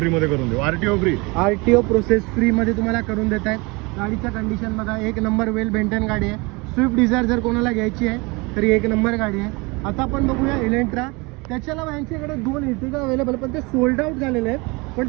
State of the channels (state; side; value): quieter; left; 26.7 dB